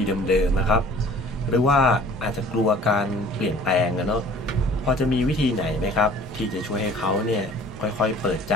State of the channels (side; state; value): both; normal; correlation 0.49